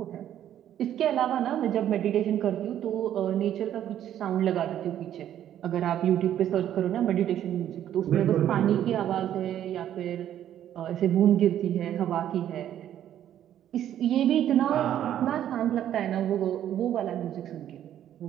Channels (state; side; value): quieter; left; 11.0 dB